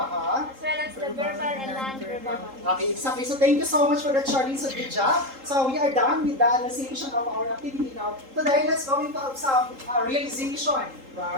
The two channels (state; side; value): late; left; 3.8 ms